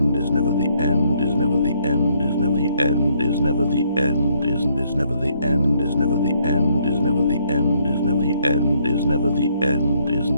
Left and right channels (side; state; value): both; inverted; correlation -0.70